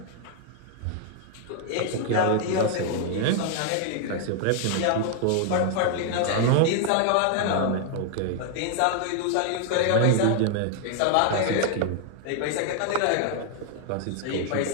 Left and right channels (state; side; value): different; both; correlation 0.00